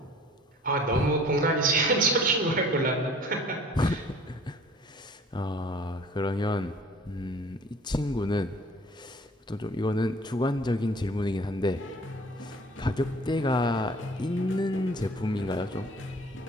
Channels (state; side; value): normal; both; correlation 0.50